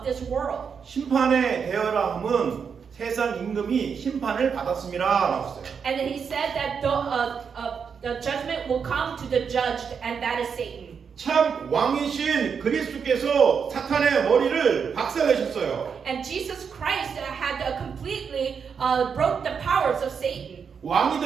this world. 심판에 대하라 함은 세상 임금이 심판을 받았음이라 나왔어요. And then he said that the judgment will come to the judged, and that is Satan. 참 왕이신 그리스도께서 사탄의 머리를 박살내셨어요. And Jesus Christ had completely broke the powers of Satan. 왕이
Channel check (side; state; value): left; quieter; 6.5 dB